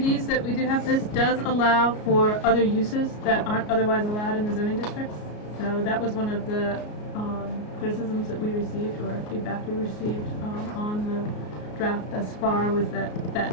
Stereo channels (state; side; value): late; right; 33 ms